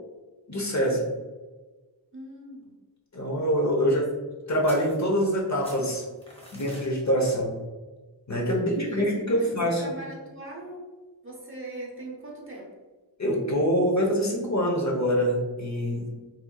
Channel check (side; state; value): both; normal; correlation 0.02